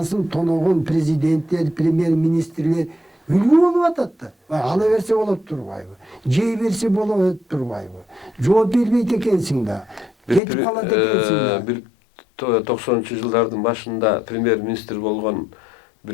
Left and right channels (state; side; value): drops out; right; at 10.4 s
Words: тоногон президенттер, премьер-министрлер үлгү болуп атат да. Ала берсе болот турбайбы? Жей берсе болот турбайбы? Жооп бербейт экенсиң да. Кетип калат экенсиң да. Бир 90-жылдардын башында премьер-министр болгон